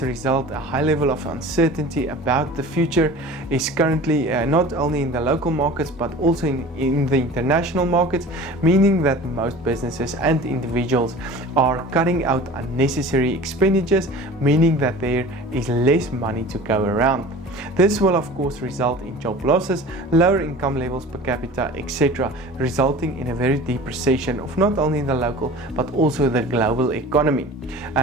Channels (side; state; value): both; normal; correlation 0.40